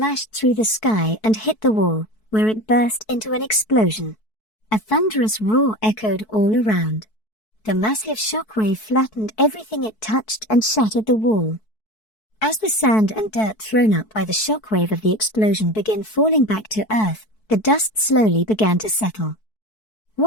through the sky and hit the wall, where it burst into an explosion. A thunderous roar echoed all around. The massive shockwave flattened everything it touched and shattered the wall. As the sand and dirt thrown up by the shockwave of the explosion began falling back to earth, the dust slowly began to settle.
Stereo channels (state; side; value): late; right; 4.6 ms